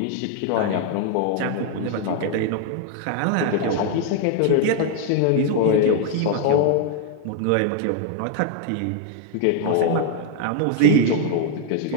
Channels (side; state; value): both; different; correlation 0.00